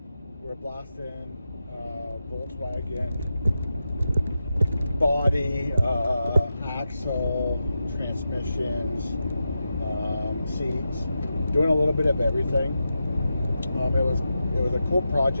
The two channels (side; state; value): both; inverted; correlation -0.89